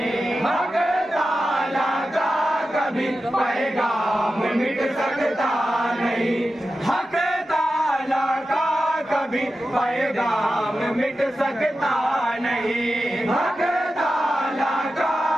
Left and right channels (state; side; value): normal; both; correlation 0.92